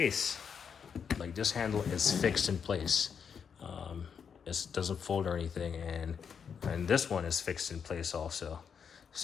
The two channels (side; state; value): right; quieter; 6.9 dB